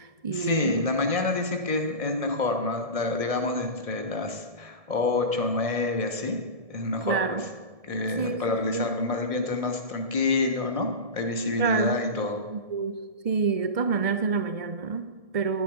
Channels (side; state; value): left; late; 1.7 ms